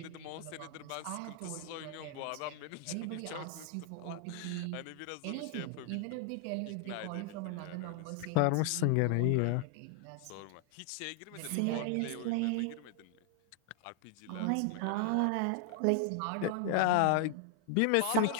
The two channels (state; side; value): different; both; correlation 0.00